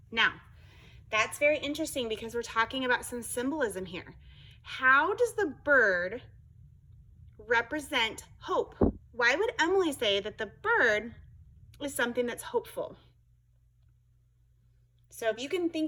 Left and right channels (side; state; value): both; identical; correlation 1.00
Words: Now, that's very interesting because we're talking about some symbolism here. How does the bird represent hope? Why would Emily say that the bird is something that's hopeful? So if you can